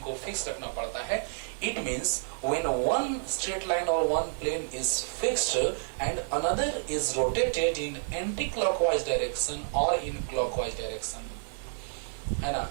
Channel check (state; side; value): silent; left; digital silence